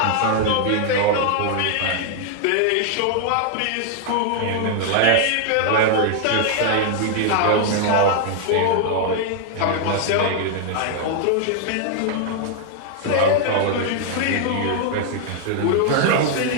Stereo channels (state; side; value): different; both; correlation 0.00